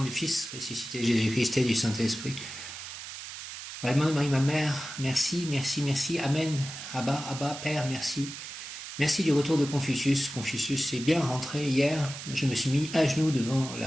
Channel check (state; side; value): noise; right; hiss, 10 dB below the sound